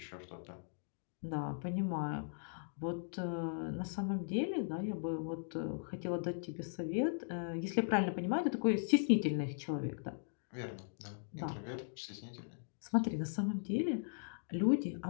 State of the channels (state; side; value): silent; right; digital silence